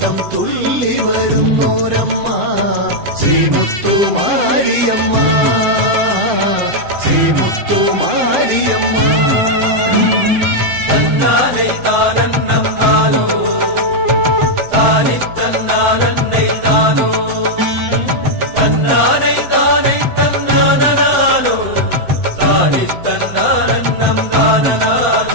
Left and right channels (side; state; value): left; late; 7.8 ms